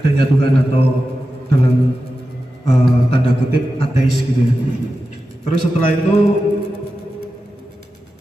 Tuhan atau dalam tanda kutip ateis gitu ya. Terus setelah itu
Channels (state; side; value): normal; both; correlation 0.92